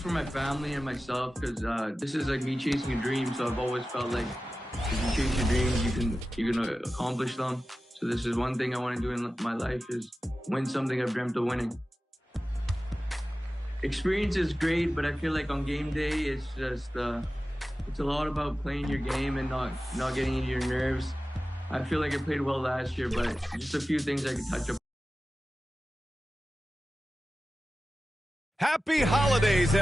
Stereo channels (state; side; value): normal; both; correlation 0.95